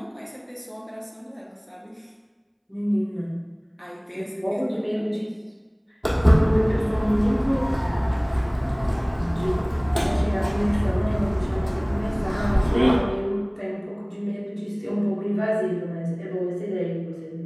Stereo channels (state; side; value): identical; both; correlation 1.00